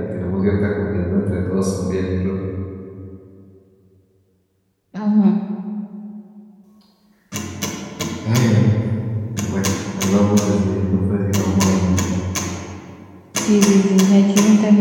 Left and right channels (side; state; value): both; identical; correlation 1.00